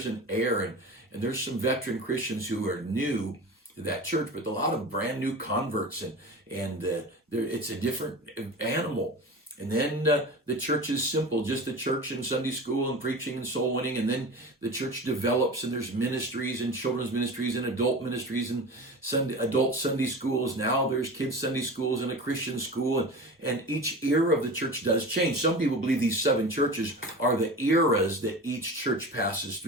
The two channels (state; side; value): normal; both; correlation 0.32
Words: an air, and there's some veteran Christians who are new to that church, but a lot of brand new converts, and it's a different animal. And then the church is simple, just a church and Sunday school and preaching and soul winning. And then the church develops, and there's ministries and children's ministries and adult ministries and adult Sunday schools. Now there's kids Sunday schools and a Christian school. And each era of the church does change. Some people believe these 7 churches are the eras that each church passes